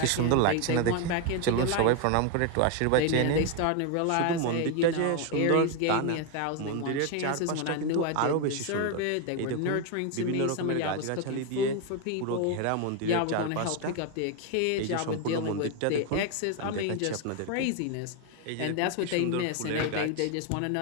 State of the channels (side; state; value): both; different; correlation 0.01